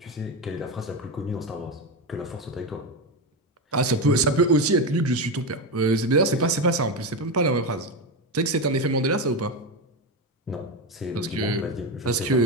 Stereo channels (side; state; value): both; normal; correlation 0.15